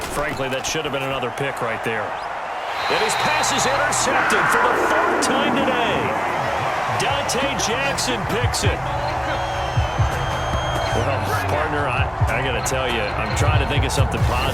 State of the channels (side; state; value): both; identical; correlation 1.00